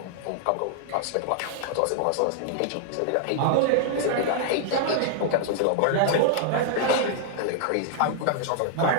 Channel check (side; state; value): both; different; correlation -0.01